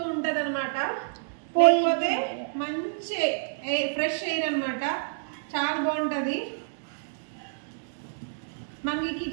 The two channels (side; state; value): left; silent; digital silence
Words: ఉంటది అనమాట. లేకపోతే మంచి ఫ్రెష్ ఎయిర్ అనమాట, చాలా బాగుంటది. మనకి